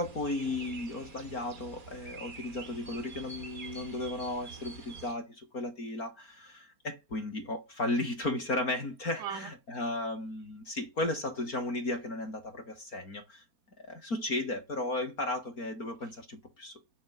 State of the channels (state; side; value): late; right; 4.4 ms